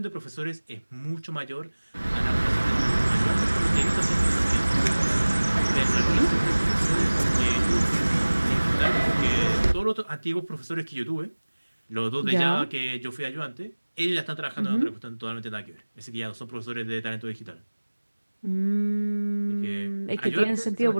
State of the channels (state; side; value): inverted; both; correlation -1.00